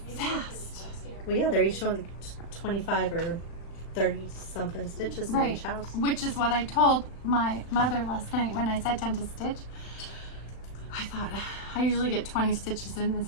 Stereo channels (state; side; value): late; right; 37 ms